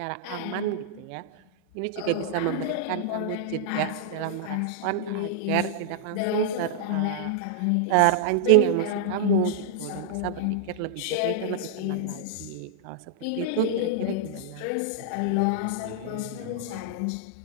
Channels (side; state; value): both; different; correlation -0.01